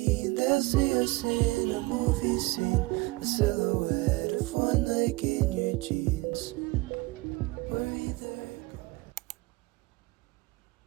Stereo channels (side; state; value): left; quieter; 22.5 dB